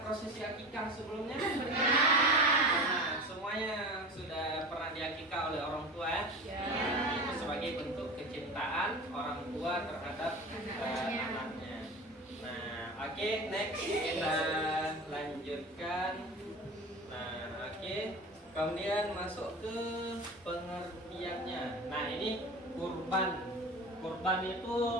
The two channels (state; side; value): normal; both; correlation 0.32